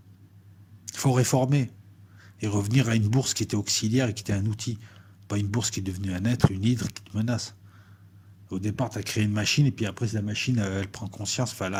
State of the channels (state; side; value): identical; both; correlation 1.00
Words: Il faut réformer et revenir à une bourse qui était auxiliaire et qui était un outil, pas une bourse qui est devenue un être, une hydre qui te menace. Au départ, tu as créé une machine, et puis après, la machine, elle prend conscience. Enfin,